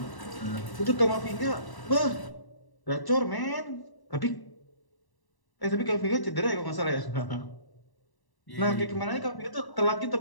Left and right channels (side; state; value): right; late; 1.1 ms